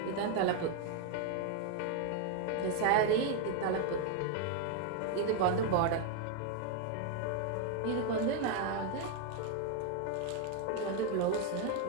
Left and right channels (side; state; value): both; different; correlation 0.01